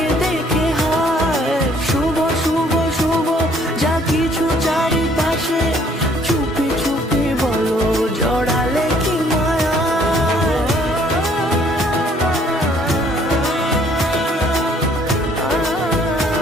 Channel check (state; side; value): normal; both; correlation 0.61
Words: দেখে হায়। শুভ শুভ শুভ যা কিছু চারিপাশে, চুপি চুপি বলো জড়ালে কি মায়া।